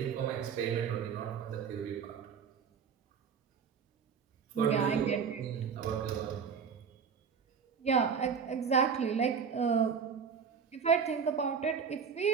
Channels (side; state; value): left; quieter; 6.5 dB